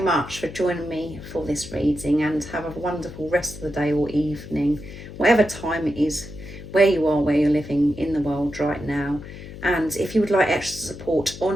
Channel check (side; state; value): left; noise; hum, 13 dB below the sound